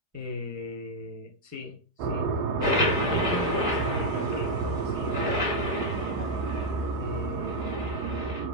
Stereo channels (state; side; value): late; left; 4.9 ms